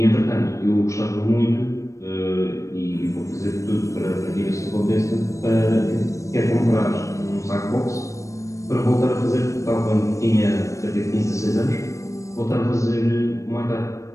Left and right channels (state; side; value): late; right; 0.15 ms